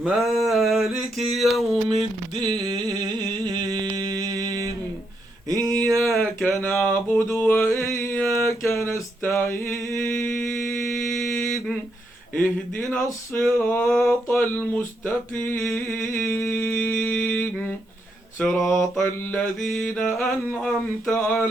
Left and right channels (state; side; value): normal; both; correlation 0.79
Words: يوم الدين إياك نعبد وإياك نستعين اهدنا الصراط المستقيم صراط الذين أنعمت